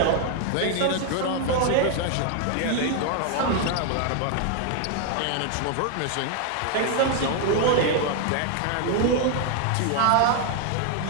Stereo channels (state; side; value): different; both; correlation 0.00